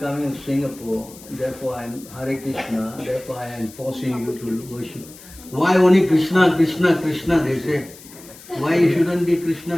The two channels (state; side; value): noise; left; hiss, 20 dB below the sound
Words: to Singapore, therefore I'm Hare Krishna, therefore I am forcing you to worship. Why only Krishna, Krishna, Krishna, they say. Why you shouldn't be Krishna,